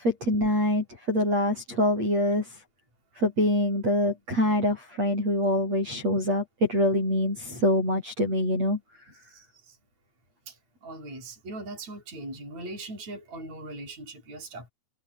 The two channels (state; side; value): late; left; 8.5 ms